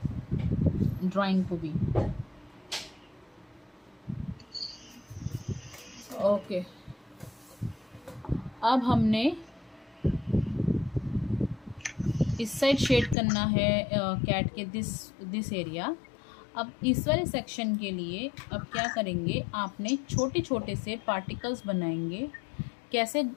ड्राइंग को भी। ओके, अब हमने इस साइड शेड करना है कैट के दिस एरिया। अब इस वाले सेक्शन के लिए अब क्या करेंगे, आपने छोटे छोटे से पार्टिकल्स बनाएंगे, कैसे,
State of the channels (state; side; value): drops out; right; at 13.2 s